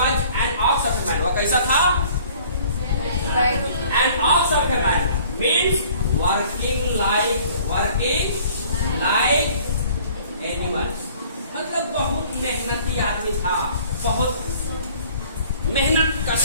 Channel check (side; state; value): both; inverted; correlation -0.53